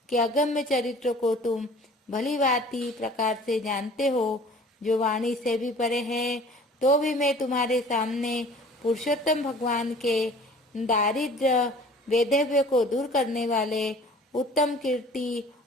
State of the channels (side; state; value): both; normal; correlation 0.48